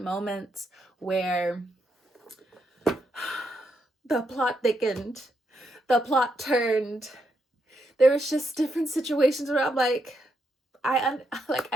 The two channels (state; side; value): normal; both; correlation 0.80